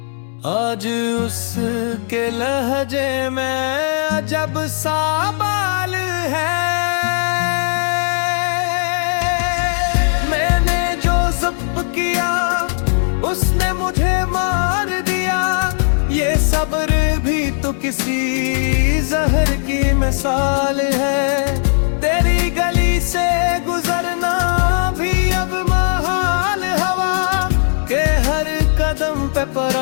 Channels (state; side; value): silent; right; 65 dB below the other